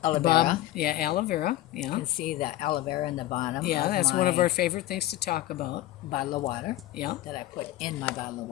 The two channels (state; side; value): quieter; right; 15.2 dB